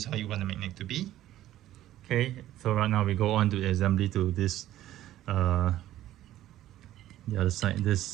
how you want the magnet to be. Okay, so right now we go on to the assembly to this the other side,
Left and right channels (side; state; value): left; quieter; 13.6 dB